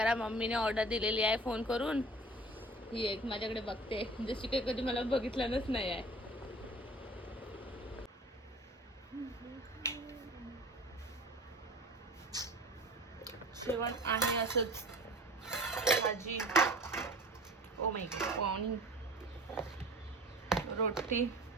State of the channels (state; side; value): normal; both; correlation 0.42